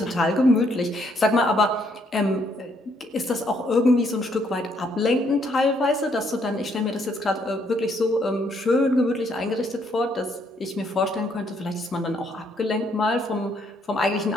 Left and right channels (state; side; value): normal; both; correlation 0.70